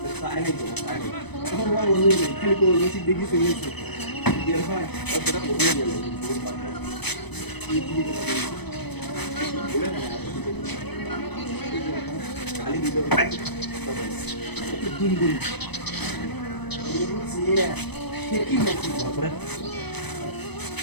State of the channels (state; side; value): late; right; 0.99 ms